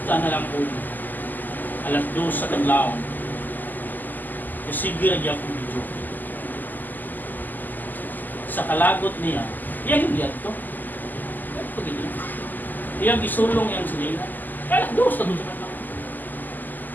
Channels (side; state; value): right; late; 0.086 ms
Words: na lang po. Alas 2 sa kadlaw. Kasi gira akong video. Sa kalagot niya, yan yung diyan to. Yan ito ganyan. Iyang isulong yung silingan. Alas 2 sa kadlaw.